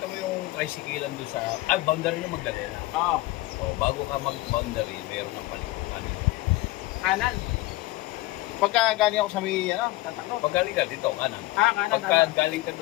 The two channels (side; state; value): right; quieter; 19.0 dB